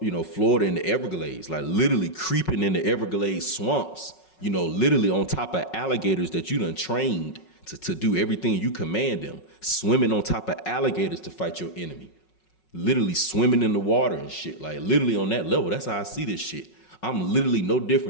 Florida and the Everglades, like literally creeping in the Everglades swamps, literally on top of alligators that you done trained to do everything you command them, swimming on top of alligators to fight your enemy, literally swimming in the water and shit, like literally on that level. That's how I see this shit. I'm literally no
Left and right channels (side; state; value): right; late; 5.4 ms